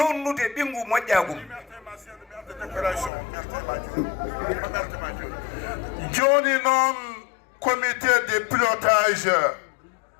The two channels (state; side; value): drops out; right; at 3.1 s